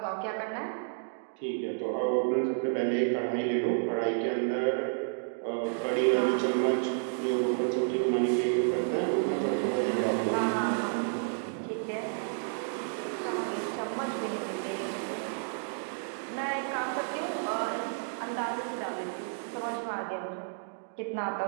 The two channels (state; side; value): silent; left; digital silence